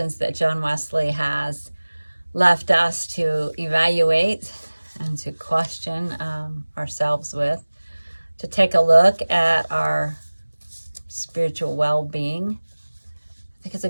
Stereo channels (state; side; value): inverted; both; correlation -1.00